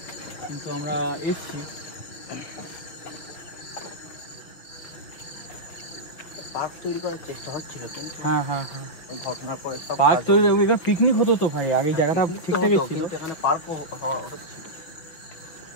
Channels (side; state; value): right; late; 6.3 ms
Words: কিন্তু আমরা এসছি। পার্ক তৈরি করার চেষ্টা হচ্ছিল, কিন্তু হ্যাঁ হ্যাঁ হ্যাঁ, ঘটনার পরে সব পার্ক তৈরি, এখানে পিকনিক হতো তো ভাই, আগে জায়গাটা ঠিকঠাকই ছিল, কিন্তু এখানে পার্কও হচ্ছিল।